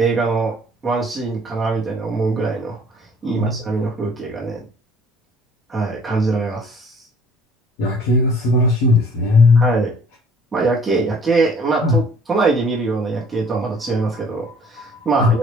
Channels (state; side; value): normal; both; correlation 0.56